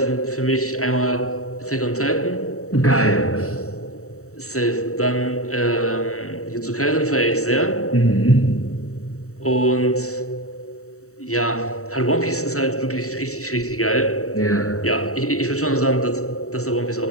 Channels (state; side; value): late; right; 0.64 ms